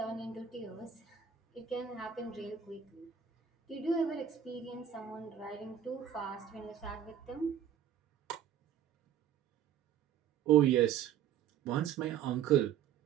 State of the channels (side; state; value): left; quieter; 8.9 dB